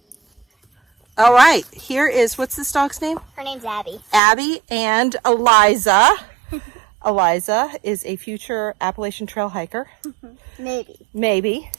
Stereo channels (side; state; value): left; drops out; at 4.2 s